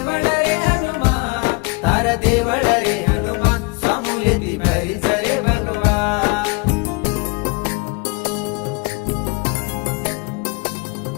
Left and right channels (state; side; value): quieter; right; 26.9 dB